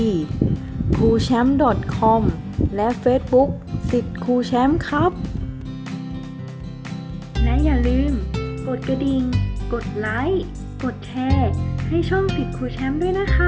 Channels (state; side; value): identical; both; correlation 1.00